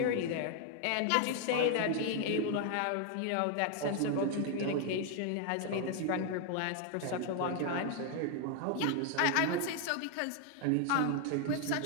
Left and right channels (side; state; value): both; different; correlation 0.00